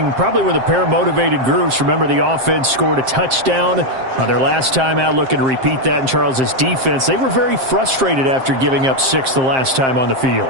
probably with a pair of motivated groups. Remember, the offense scored a touchdown on their last time out, looking to repeat that in Charles's defense. They were very frustrated after giving up 6 the last time on the field.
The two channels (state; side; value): late; left; 7.6 ms